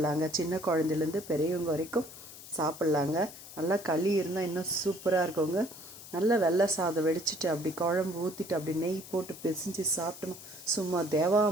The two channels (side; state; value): left; noise; hiss, 16 dB below the sound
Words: சின்ன குழந்தைலேருந்து பெரியவங்க வரைக்கும் சாப்பிட்லாங்க. நல்லா களி இருந்தால் இன்னும் சூப்பராக இருக்குங்க. நல்லா வெள்ளை சாதம் வெடிச்சிட்டு அப்படி குழம்பு ஊற்றிட்டு அப்படி நெய் போட்டு பிசைஞ்சு சாப்பிட்டோம். சும்மா